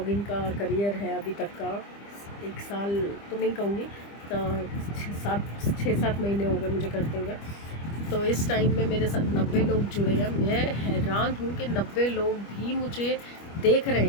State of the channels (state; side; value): late; right; 25 ms